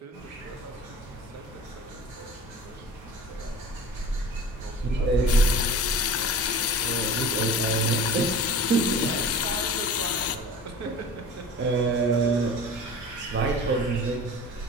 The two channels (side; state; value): both; normal; correlation 0.39